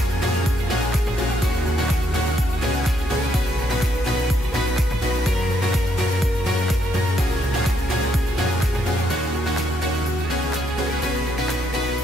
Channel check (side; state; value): both; normal; correlation 0.74